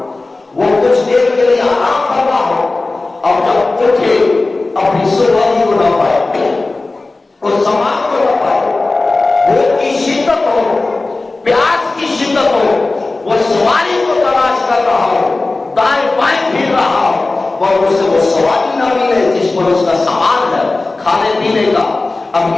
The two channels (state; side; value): quieter; right; 3.3 dB